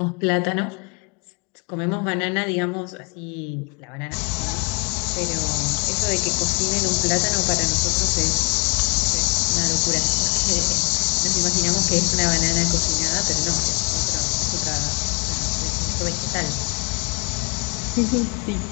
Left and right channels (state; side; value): quieter; right; 33.1 dB